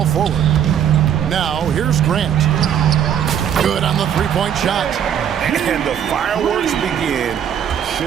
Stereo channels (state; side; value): quieter; left; 9.1 dB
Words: forward. Now, here's Grant. Good on the three-point shot. And the fireworks begin.